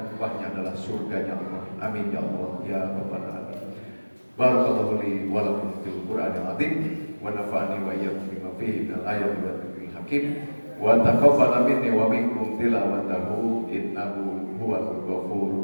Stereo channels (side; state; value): both; inverted; correlation -1.00